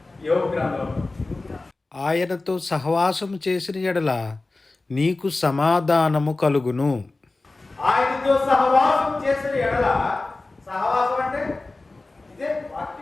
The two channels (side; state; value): right; quieter; 3.3 dB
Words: యోబు గ్రంథం. ఆయనతో సహవాసము చేసిన ఎడల నీకు సమాధానము కలుగును. ఆయనతో సహవాసం చేసిన ఎడల, సహవాసం అంటే ఇదే